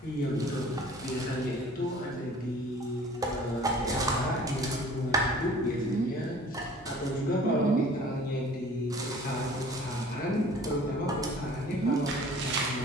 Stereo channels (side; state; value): both; normal; correlation 0.48